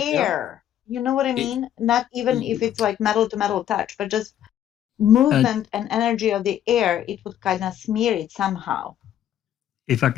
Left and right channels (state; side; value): quieter; right; 10.9 dB